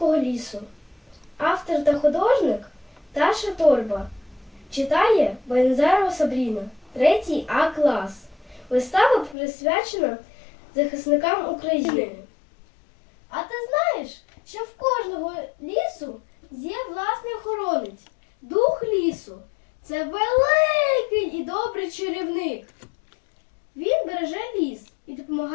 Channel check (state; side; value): drops out; right; at 9.3 s